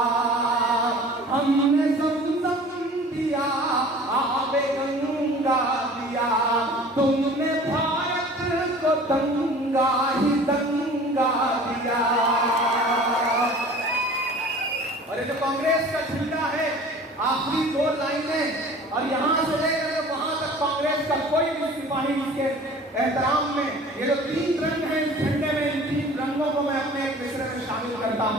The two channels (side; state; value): both; normal; correlation 0.45